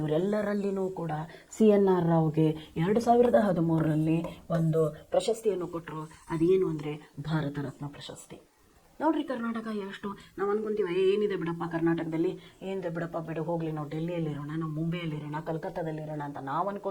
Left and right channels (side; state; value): both; identical; correlation 1.00